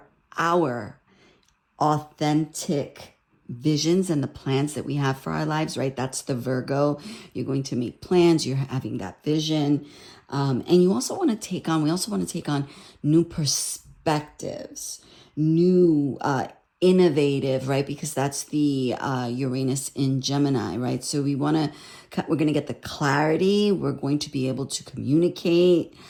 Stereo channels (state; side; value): identical; both; correlation 1.00